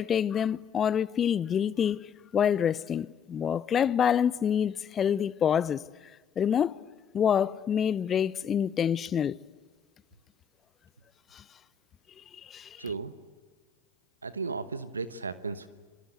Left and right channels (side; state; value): right; quieter; 7.6 dB